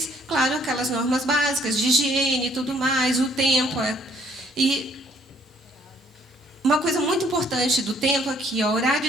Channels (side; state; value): both; normal; correlation 0.63